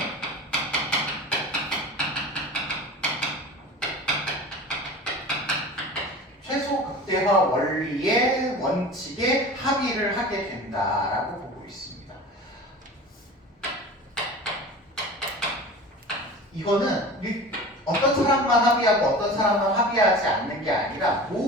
최소 극대화 원리의 원칙에 합의를 하게 된다라고 보고 있습니다. 이거는 어떤 사람만 합의하고 어떤 사람만 합의하지 않는 게 아니라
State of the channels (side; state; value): both; normal; correlation 0.36